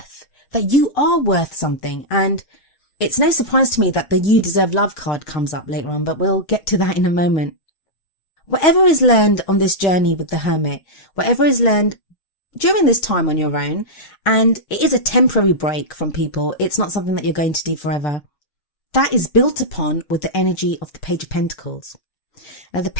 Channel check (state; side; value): late; right; 6.4 ms